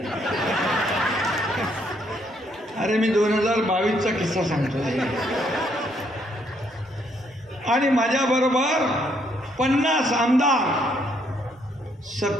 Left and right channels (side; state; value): both; normal; correlation 0.71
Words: अरे मी 2022चा किस्सा सांगतो. आणि माझ्याबरोबर 50 आमदार